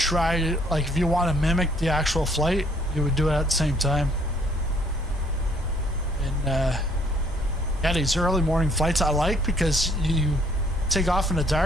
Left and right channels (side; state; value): both; normal; correlation 0.63